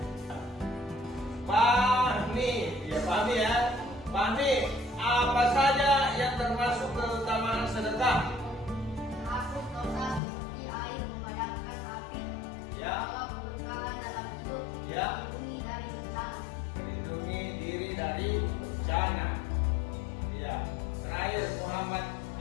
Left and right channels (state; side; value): drops out; right; at 10.2 s